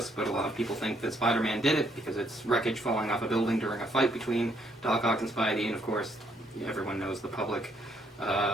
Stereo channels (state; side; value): normal; both; correlation 0.70